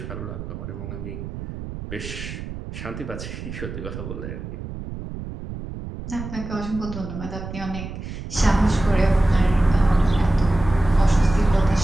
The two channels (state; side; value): noise; right; rumble, 9 dB below the sound